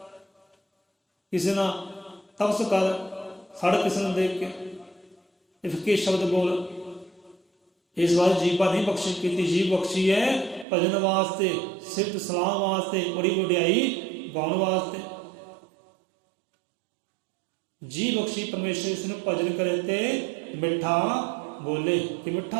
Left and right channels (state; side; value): drops out; left; at 10.7 s